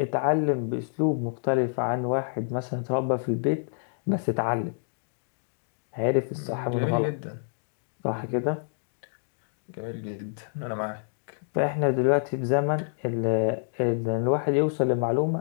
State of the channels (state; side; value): silent; right; digital silence